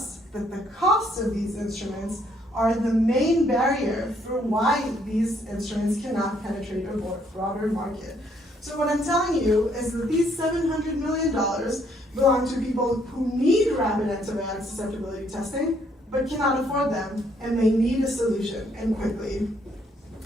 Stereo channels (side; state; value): both; normal; correlation 0.68